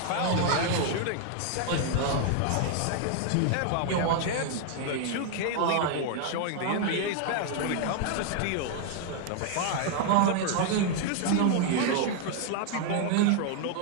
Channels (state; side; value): different; both; correlation 0.00